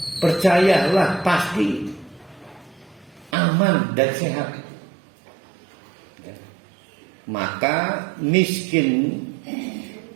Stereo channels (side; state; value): left; drops out; at 3.3 s